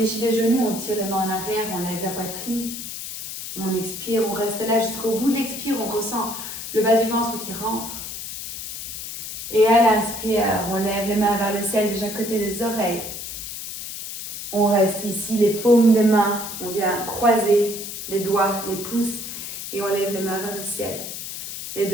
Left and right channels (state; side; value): noise; left; hiss, 8 dB below the sound